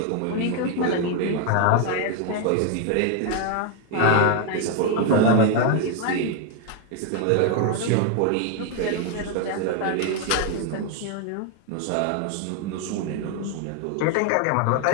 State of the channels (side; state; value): both; different; correlation 0.01